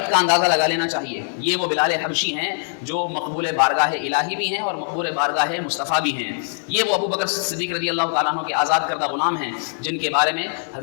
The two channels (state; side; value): silent; right; digital silence